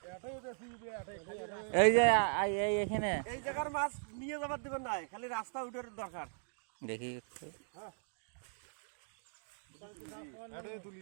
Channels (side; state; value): left; silent; digital silence